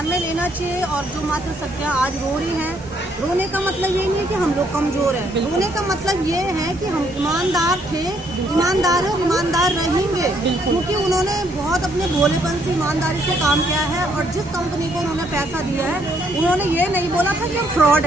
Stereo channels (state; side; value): normal; both; correlation 0.70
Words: में लेना चाहिए। और जो मातृशक्तियाँ आज रो रही हैं, रोने का मतलब ये नहीं है कि हम लोग कमज़ोर हैं, रोने का मतलब ये है कि हम ईमानदार थे, ईमानदार हैं और ईमानदार रहेंगे, क्योंकि उन्होंने बहुत अपने भोलेपन से ईमानदारी से काम किया है। और जिस कंपनी को उन्होंने पैसा दिया है, उन्होंने ये नहीं बोला था कि हम फ्रॉड